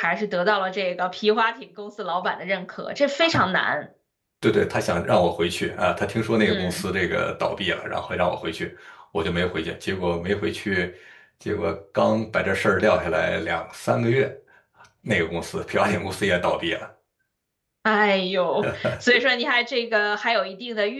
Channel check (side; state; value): both; identical; correlation 1.00